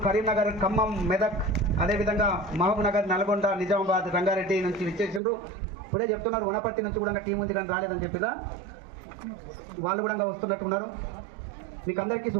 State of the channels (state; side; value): drops out; left; at 5.2 s